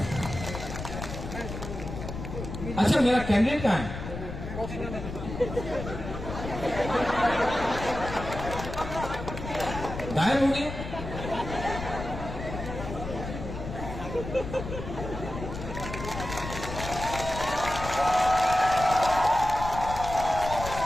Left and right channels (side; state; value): left; noise; rumble, 8 dB below the sound